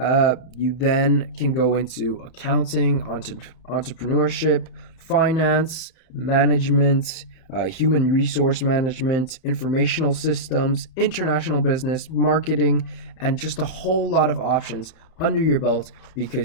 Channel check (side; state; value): right; late; 31 ms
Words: then can go into accounting, entrepreneurship, finance, management, human resource management, informational systems, international business, marketing, and just a whole lot of options under your belt